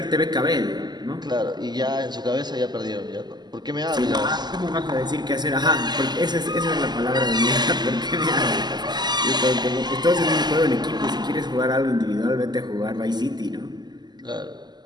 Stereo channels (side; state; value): left; late; 0.21 ms